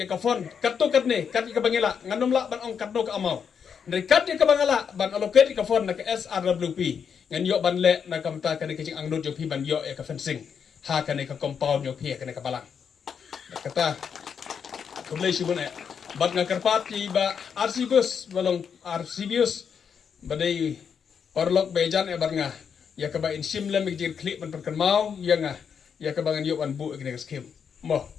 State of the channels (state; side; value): quieter; right; 7.0 dB